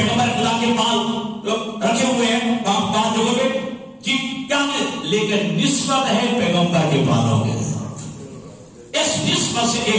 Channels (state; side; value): identical; both; correlation 1.00